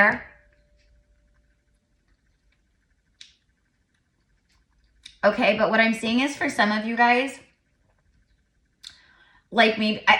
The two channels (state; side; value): identical; both; correlation 1.00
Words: Okay, but what I'm seeing is for some of you guys, like maybe,